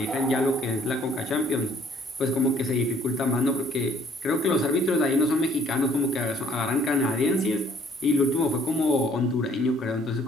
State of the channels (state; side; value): normal; both; correlation 0.61